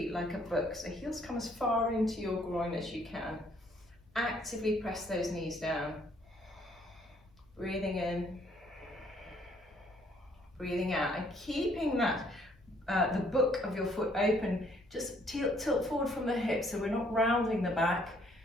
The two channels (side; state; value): left; noise; hum, 30 dB below the sound